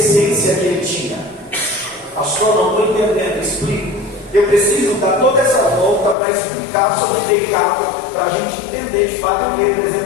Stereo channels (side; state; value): right; drops out; at 6.2 s